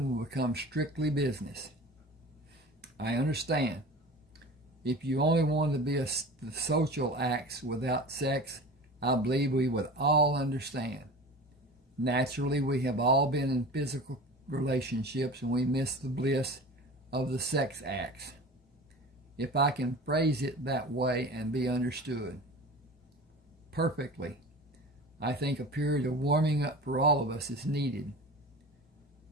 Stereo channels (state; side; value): normal; both; correlation 0.36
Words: will become strictly business. I understand. If you only wanted to be the social acts without sex, I believe we would all understand. Naturally, we have all been in physical relationships and we miss the bliss of the sex acts, if I can phrase it that way and be understood. Perfectly. I think a period of warming up for all of us is needed.